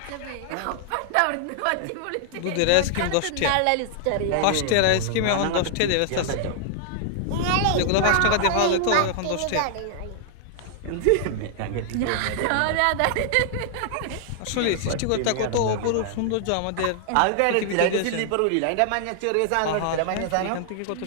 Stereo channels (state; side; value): different; both; correlation -0.01